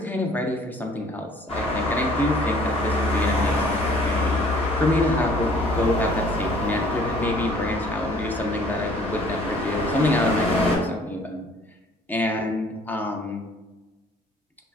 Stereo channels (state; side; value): normal; both; correlation 0.56